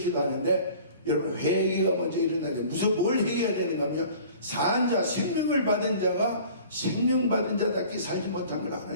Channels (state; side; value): inverted; both; correlation -0.47